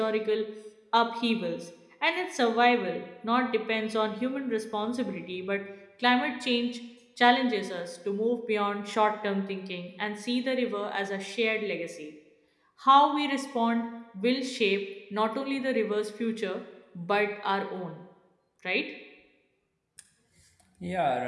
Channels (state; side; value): identical; both; correlation 1.00